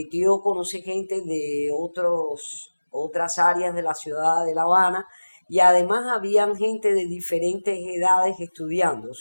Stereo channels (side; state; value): both; inverted; correlation -1.00